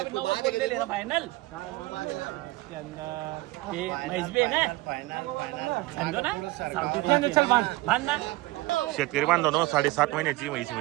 90 बोल दे लेना फाइनल. इसके अंदर ये म्हैस भी है ना, समझो ना. चल बांध ना. शेतकरी बांधवांनो 7.5 महिन्याची म्हैस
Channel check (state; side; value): quieter; left; 19.9 dB